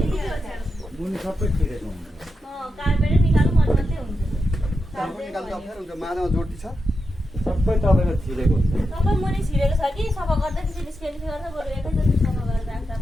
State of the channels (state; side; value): normal; both; correlation 0.87